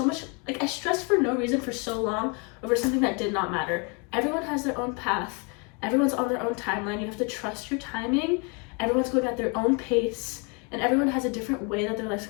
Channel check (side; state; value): right; quieter; 32.7 dB